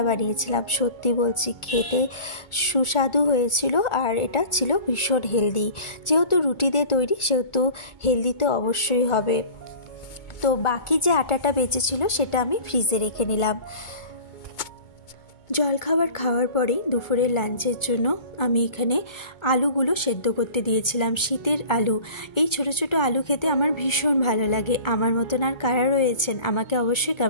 বানিয়েছিলাম। সত্যি বলছি খেতে সুস্বাদু হয়েছিল আর এটা ছিল ভীষণ হেলদি। যেহেতু রুটি দিয়ে তৈরি সেহেতু হেলদি তো অবশ্যই হবে। তো বাকি যে আটাটা বেঁচেছিল সেটা আমি ফ্রিজে রেখে নিলাম। জলখাবার খাওয়ার পরেই দুপুরের লাঞ্চের জন্য আমি এখানে আলুগুলো সেদ্ধ করতে দিয়েছিলাম। শীতের আলু, এই ছোট ছোট আলু খেতে আমার ভীষণ ভালো লাগে। আমার মতন আর কারা রয়েছেন আমাকে অবশ্যই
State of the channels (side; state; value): right; late; 2.2 ms